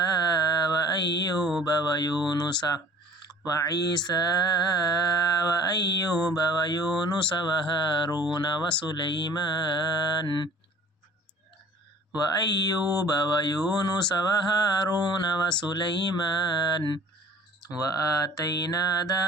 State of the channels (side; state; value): both; normal; correlation 0.49